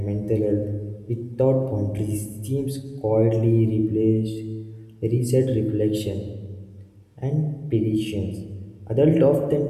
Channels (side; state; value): both; identical; correlation 1.00